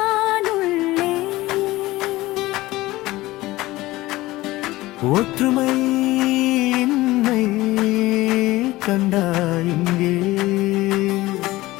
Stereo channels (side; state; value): right; quieter; 18.4 dB